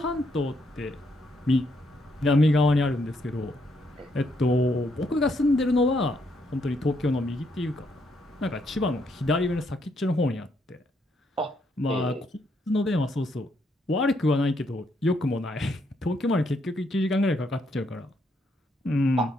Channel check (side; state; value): both; normal; correlation 0.74